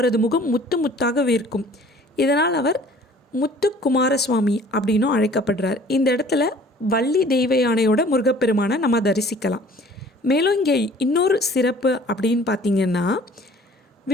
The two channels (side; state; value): both; normal; correlation 0.51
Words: முகம் முத்து முத்தாக வேர்க்கும். இதனால் அவர் முத்துக்குமாரசுவாமி அப்படின்னும் அழைக்கப்படுறார். இந்த இடத்துல வள்ளி தெய்வ யானையோட முருகப்பெருமானை நம்ம தரிசிக்கலாம். மேலும் இங்கே இன்னொரு சிறப்பு அப்படின்னு பார்த்திங்கன்னா,